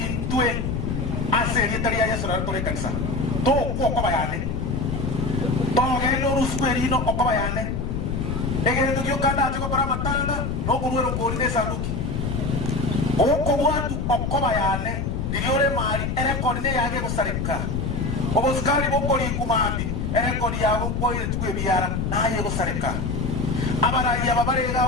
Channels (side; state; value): left; noise; rumble, 1 dB below the sound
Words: aseri taria ya sura tore kanisa to kwa bayane to gelo rusperino kwa bayane egere tukio kanda choko para matanga no kuruero korine sanduki oko watu kwa bayane diliore mari ere korine yage gusarika obuskari bokori kumandi ere kori yabo koire tukwe biara naye gusarika abarayi